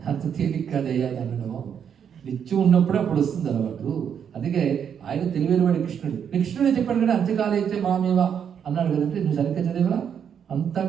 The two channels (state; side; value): quieter; left; 8.0 dB